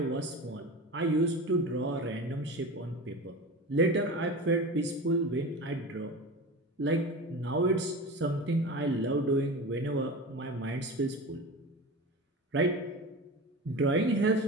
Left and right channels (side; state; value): both; normal; correlation 0.30